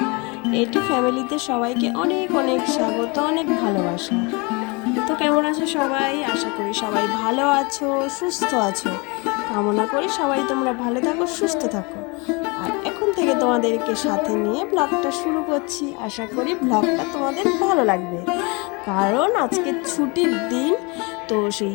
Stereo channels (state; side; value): quieter; right; 29.1 dB